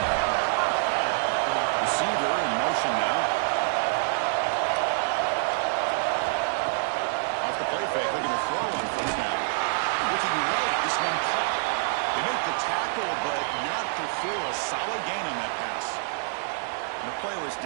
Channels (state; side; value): silent; left; digital silence